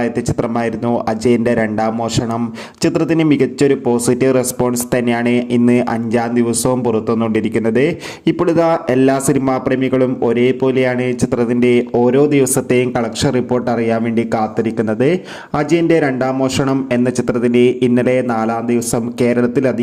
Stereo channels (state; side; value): identical; both; correlation 1.00